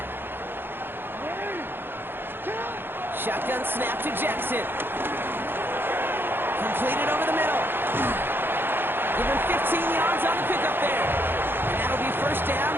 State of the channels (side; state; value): left; late; 0.10 ms